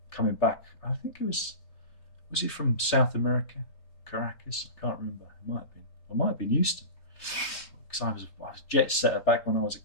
coming back. I think it was it from South America, Caracas? I can't remember. It might have been. I might have been Houston, because I was jet setter back when I was a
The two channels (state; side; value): late; right; 3.4 ms